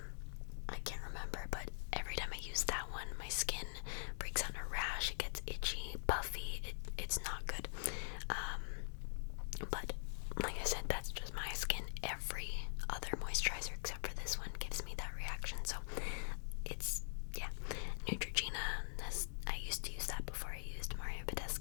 I can't remember, but every time I use that one, my skin breaks out in a rash. It gets itchy, puffy. It's not good. But like I said, that's just my skin. Every other moisturizer except for this one gives me that reaction. So it's, yeah. Neutrogena, I used to use that before I used Mario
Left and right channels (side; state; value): right; silent; digital silence